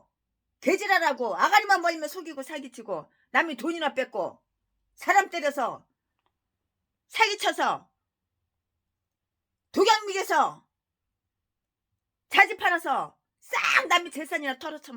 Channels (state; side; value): identical; both; correlation 1.00